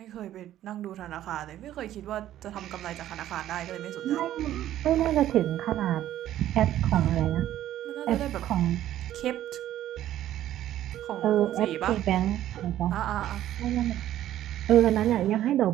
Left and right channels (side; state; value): left; quieter; 12.7 dB